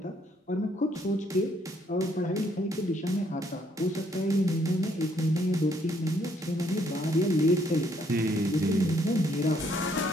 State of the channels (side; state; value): both; normal; correlation 0.69